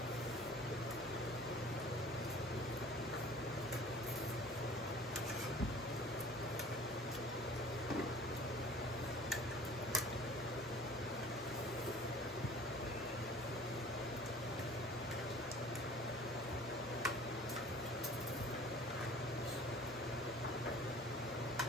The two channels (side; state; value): both; normal; correlation 0.47